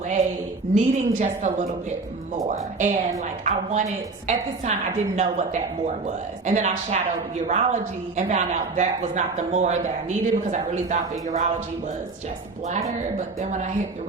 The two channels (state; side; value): quieter; left; 3.9 dB